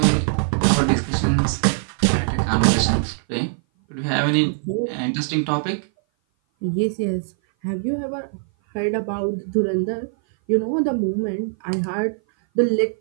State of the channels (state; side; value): silent; left; 57 dB below the other